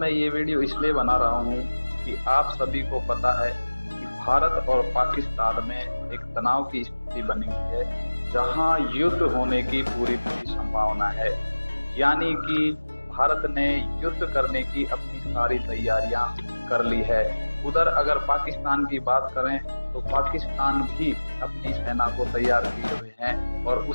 ये वीडियो इसलिए बना रहा हूँ कि आप सभी को पता है कि भारत और पाकिस्तान में एक तनाव की स्थिति बनी हुई है, जहाँ युद्ध होने की पूरी पूरी संभावना है। यानी कि भारत ने युद्ध करने की अपनी सारी तैयारियां कर ली है। उधर अगर पाकिस्तान की बात करें तो पाकिस्तान भी अपनी सेना को तैयार किए हुए हैं और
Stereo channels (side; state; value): both; inverted; correlation -1.00